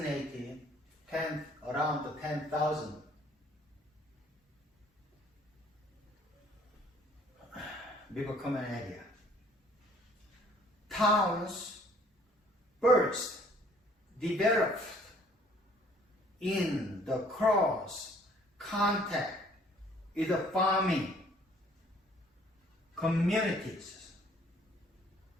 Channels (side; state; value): both; normal; correlation 0.58